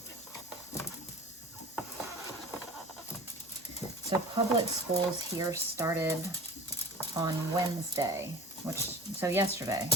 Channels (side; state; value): both; normal; correlation 0.38